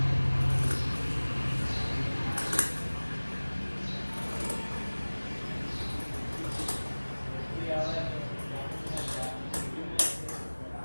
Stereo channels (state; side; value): inverted; both; correlation -1.00